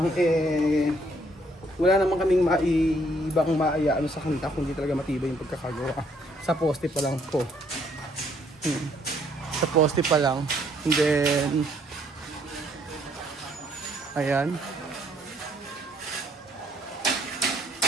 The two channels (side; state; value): both; normal; correlation 0.67